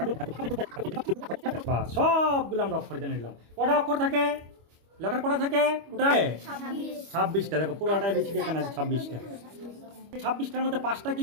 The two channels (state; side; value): late; left; 25 ms